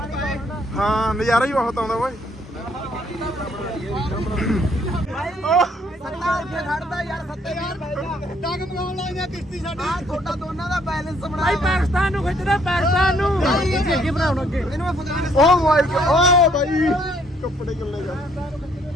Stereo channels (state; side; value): normal; both; correlation 0.66